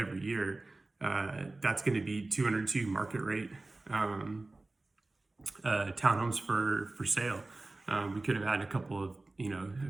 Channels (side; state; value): left; quieter; 3.1 dB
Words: year. That's going to be 202 market rate townhomes for sale. We could have had a couple of,